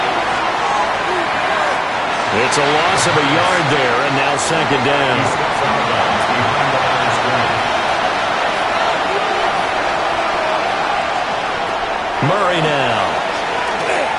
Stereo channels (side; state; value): both; identical; correlation 1.00